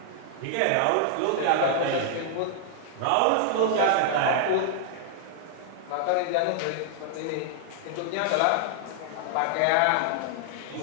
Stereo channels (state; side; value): different; both; correlation -0.01